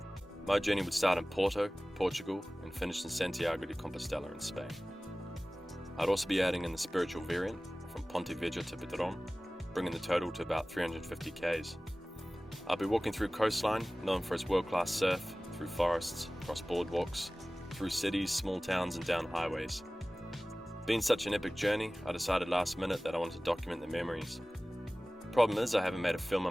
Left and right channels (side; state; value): both; normal; correlation 0.98